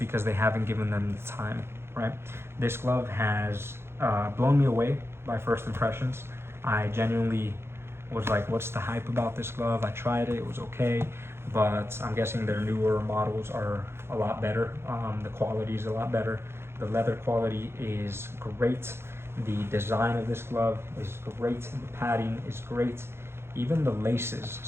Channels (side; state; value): left; late; 0.12 ms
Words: they haven't given them the time, right? This glove has blown me away by first impressions. I genuinely was like, what's the hype about this glove? I tried it, it was okay, but I'm guessing their newer models are a lot better. The quality is a lot better. The leather quality is great. The design of this glove is great. The padding is great. Even the laces,